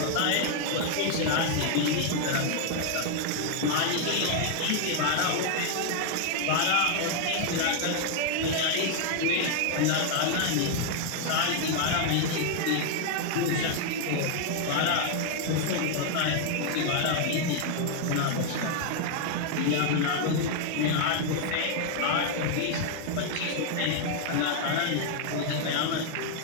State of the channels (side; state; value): both; different; correlation 0.00